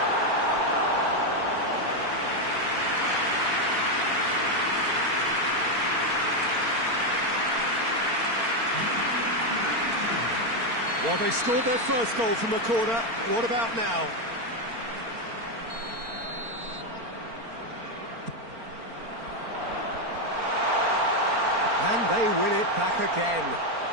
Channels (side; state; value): left; late; 4.4 ms